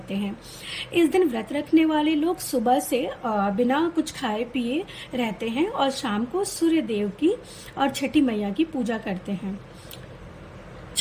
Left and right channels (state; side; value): identical; both; correlation 1.00